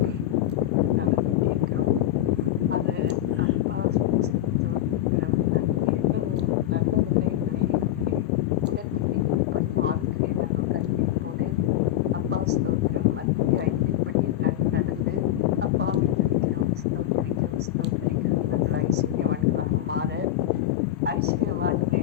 நாங்கள் விட்டிருக்கிறோம். அது அப்பா ஸ்தோத்திரம். அது எவ்வளவு நல்லதில்லை என்பதை எங்களுக்கு உணர்த்துகிறேன். எப்படியும் ஆவிக்கிறேன் நாங்கள் கல்விப்போடு அப்பா ஸ்தோத்திரம். மத்திய 5 நாங்கள் நடந்து அப்பாவை துதிக்கிறோம், ஸ்தோத்திரிக்கிறோம், ஸ்தோத்திரிக்கிறோம். நாங்கள் ஐஸ்வர்யவான்களாக மாற,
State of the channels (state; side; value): quieter; right; 13.1 dB